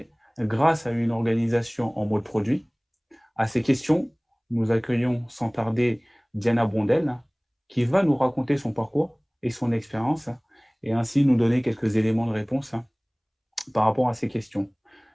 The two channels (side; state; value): both; identical; correlation 1.00